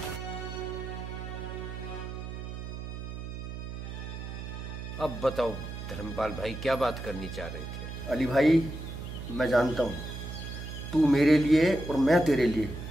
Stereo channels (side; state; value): right; noise; hum, 8 dB below the sound